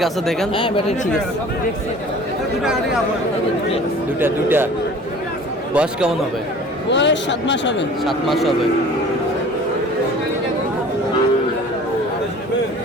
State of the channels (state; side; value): normal; both; correlation 0.45